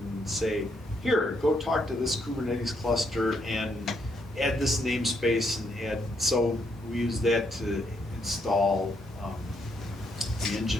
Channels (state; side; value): normal; both; correlation 0.76